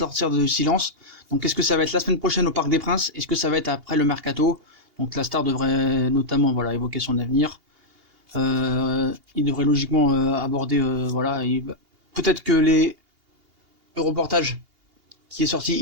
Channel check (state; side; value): late; left; 2.8 ms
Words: de silence. Donc est-ce que ça va être la semaine prochaine au Parc des Princes? Est-ce que ça va être après le mercato? Donc la star devrait notamment évoquer son avenir. Il devrait logiquement aborder peut-être que les reportages qui est sorti